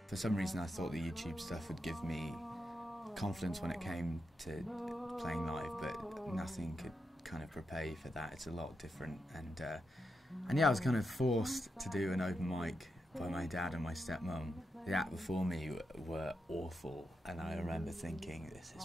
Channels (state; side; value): normal; both; correlation 0.86